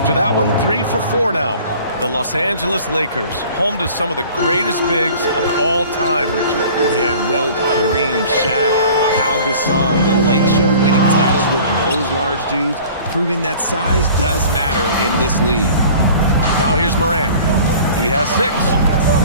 that one, 3 for 4 now. The Los Angeles Lakers, home to some of the greatest bigs of all time, Richard. Yeah, Wilt, Kareem, Shaq, Pau Gasol. The Lake Show winning titles with those large dudes, proving that size does matter in this league. Now here's Morant. He has 6.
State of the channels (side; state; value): both; inverted; correlation -0.46